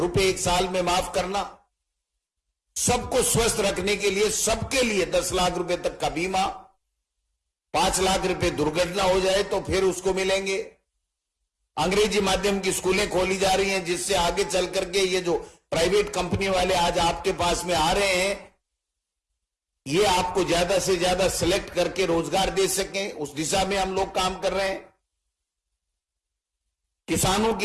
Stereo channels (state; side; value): identical; both; correlation 1.00